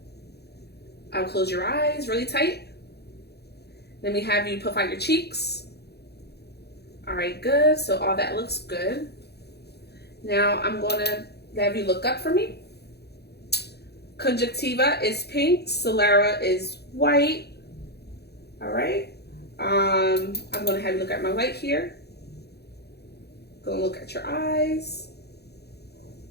I'll close your eyes really tight. Then we have you puff out your cheeks. All right, good. So all that looks good. Now I'm gonna have you look up for me. Conjunctiva is pink. Sclera is white. All right. I'm gonna have you look at my light here. Gonna look at your eyes.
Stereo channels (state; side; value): late; right; 0.48 ms